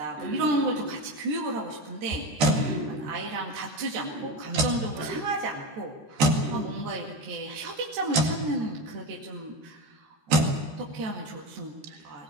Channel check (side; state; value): left; late; 13 ms